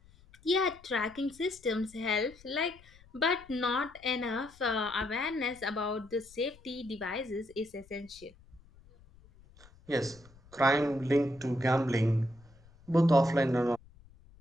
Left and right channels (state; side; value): noise; left; rumble, 25 dB below the sound